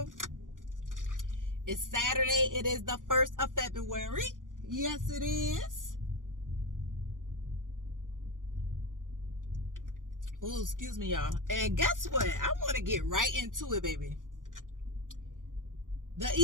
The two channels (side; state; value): left; late; 0.88 ms